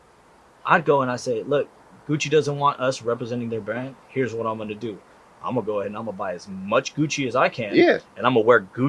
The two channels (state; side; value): identical; both; correlation 1.00